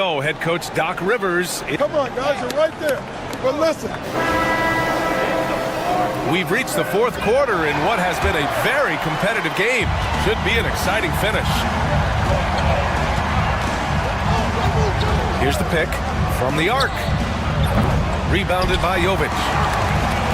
head coach Doc Rivers. Come on, guys, you're right there. But listen. We've reached the fourth quarter in what has been a very competitive game. Should be an exciting finish. Here's the pick from the arc. Rebounded by Jovic.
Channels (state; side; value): identical; both; correlation 1.00